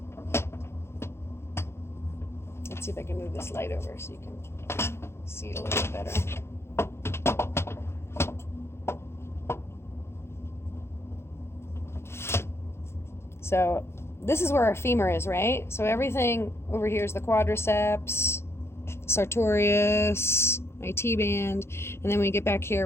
Let's see if I can move this light over so you can see it a little bit better. So this is where our femur is, right? So everything over here is the quadriceps, sartorius, IT band, and then when we get back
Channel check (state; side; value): late; right; 0.12 ms